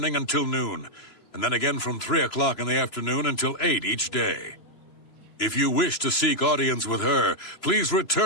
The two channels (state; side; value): late; right; 3.0 ms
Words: until noon, and then again from 3 o'clock in the afternoon until 8 each day. If you wish to seek audience with her, please